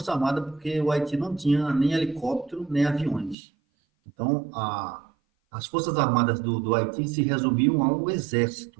armada porque o Haiti não tinha nem helicóptero, nem aviões. Então, as forças armadas do Haiti se resumiam ao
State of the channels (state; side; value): drops out; left; at 3.4 s